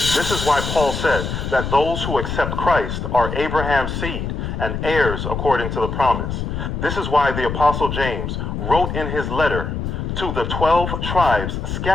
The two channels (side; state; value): left; noise; rumble, 4 dB below the sound